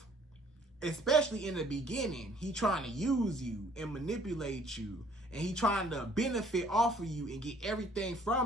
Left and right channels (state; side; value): normal; both; correlation 0.58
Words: especially in the beginning, he trying to use you and manipulate you. And he trying to benefit off of you and get everything